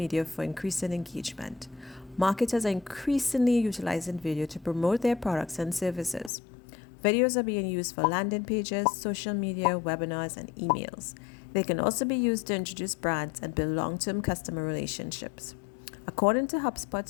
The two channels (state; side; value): drops out; right; at 6.3 s